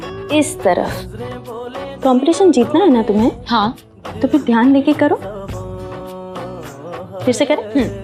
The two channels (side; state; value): both; identical; correlation 1.00